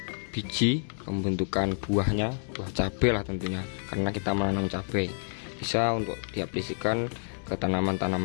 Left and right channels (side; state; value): right; silent; digital silence